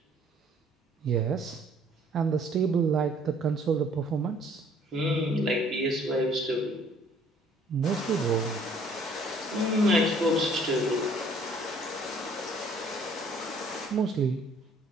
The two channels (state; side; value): normal; both; correlation 0.58